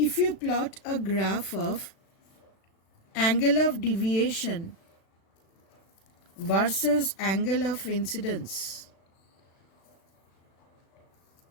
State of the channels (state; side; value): late; right; 36 ms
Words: you plot a graph of angle of deviation versus angle of incidence,